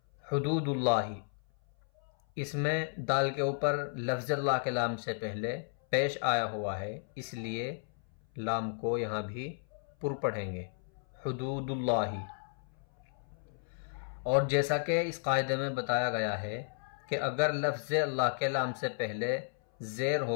حدود اللہ، اس میں دال کے اوپر لفظ اللہ کے لام سے پہلے پیش آیا ہوا ہے، اس لیے لام کو یہاں بھی پر پڑھیں گے، حدود اللہ۔ اور جیسا کہ اس قاعدے میں بتایا گیا ہے کہ اگر لفظ اللہ کے لام سے پہلے زیر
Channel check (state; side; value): silent; right; 56 dB below the other